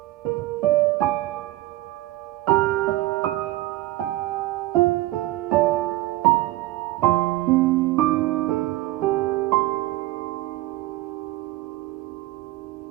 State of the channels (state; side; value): quieter; left; 17.7 dB